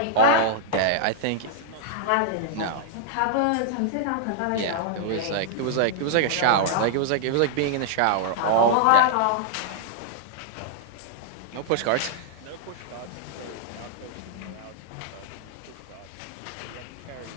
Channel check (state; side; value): different; both; correlation -0.01